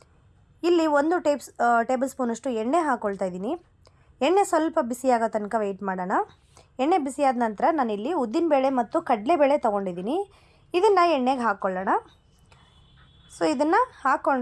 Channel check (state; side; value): identical; both; correlation 1.00